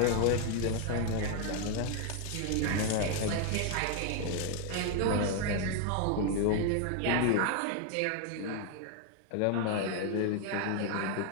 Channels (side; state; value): both; different; correlation 0.00